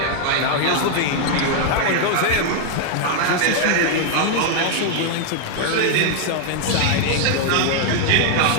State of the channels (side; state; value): both; different; correlation 0.00